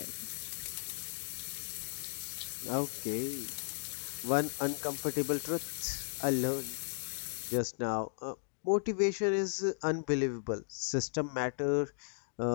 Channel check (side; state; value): right; silent; digital silence